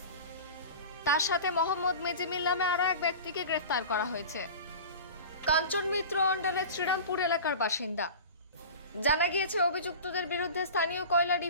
তার সাথে মোহাম্মদ মেজিমিল নামে আরও এক ব্যক্তিকে গ্রেফতার করা হয়েছে। কাঞ্চন মিত্র অন্ডালের শ্রীরামপুর এলাকার বাসিন্দা। জানা গিয়েছে, অভিযুক্তদের বিরুদ্ধে স্থানীয় কয়লা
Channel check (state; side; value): inverted; both; correlation -0.35